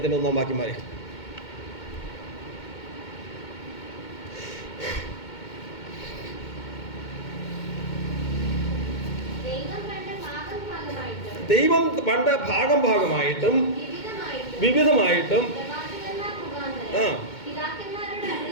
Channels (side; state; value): right; late; 2.2 ms